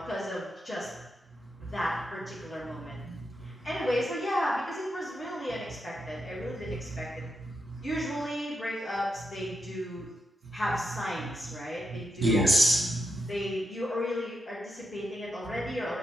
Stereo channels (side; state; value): both; normal; correlation 0.85